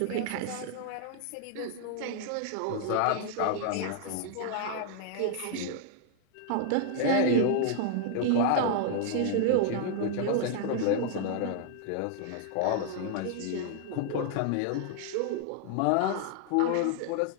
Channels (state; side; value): different; both; correlation -0.01